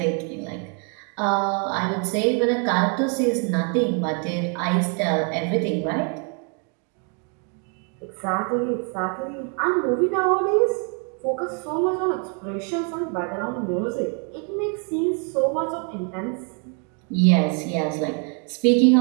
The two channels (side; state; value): left; quieter; 38.6 dB